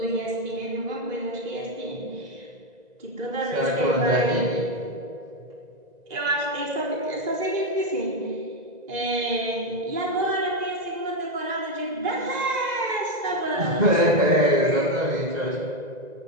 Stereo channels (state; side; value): late; left; 2.0 ms